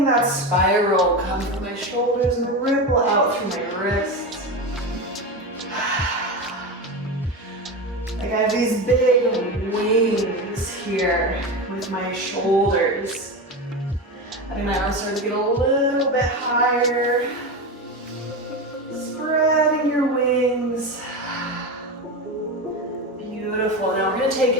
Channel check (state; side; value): normal; both; correlation 0.20